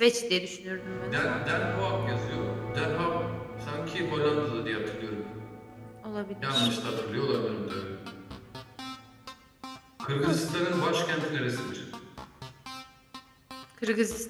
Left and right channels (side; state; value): both; identical; correlation 1.00